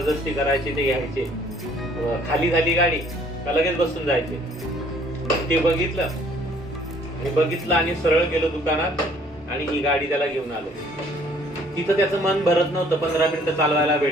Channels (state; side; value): normal; both; correlation 0.59